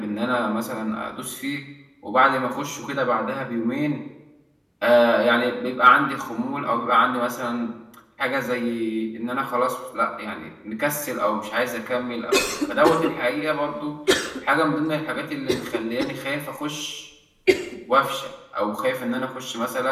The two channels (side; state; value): both; identical; correlation 1.00